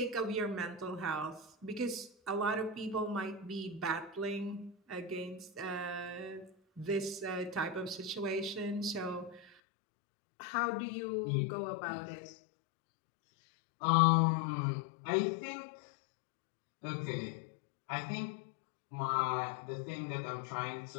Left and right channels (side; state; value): right; drops out; at 9.6 s